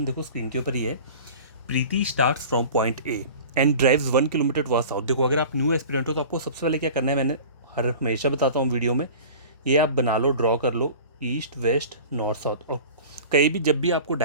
देखो स्क्रीन के ऊपर ही है। Preeti starts from point A and drives 1 kilometre towards south. देखो अगर आप न्यू एस्पिरेंट हो तो आपको सबसे पहले क्या करना है, मैंने हमेशा बताता हूँ वीडियो में, ये आप बना लो, ड्रॉ कर लो, ईस्ट वेस्ट नॉर्थ साउथ। और कहीं भी जब भी आपको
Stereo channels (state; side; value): inverted; both; correlation -0.39